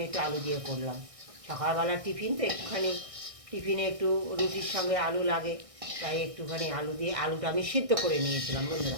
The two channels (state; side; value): late; left; 1.6 ms